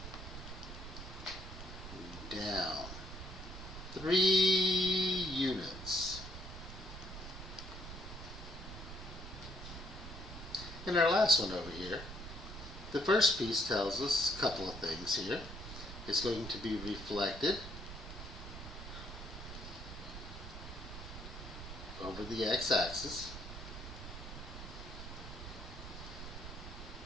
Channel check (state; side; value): noise; right; rumble, 10 dB below the sound